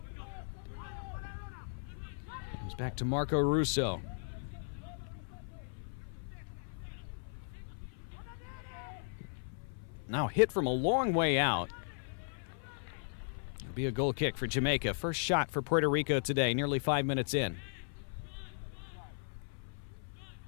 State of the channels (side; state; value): right; silent; 53 dB below the other